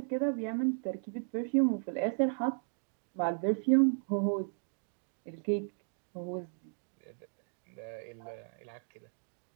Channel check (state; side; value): silent; left; 54 dB below the other